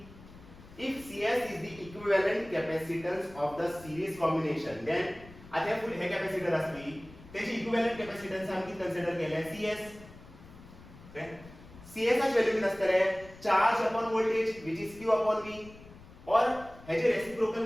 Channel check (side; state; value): left; noise; rumble, 19 dB below the sound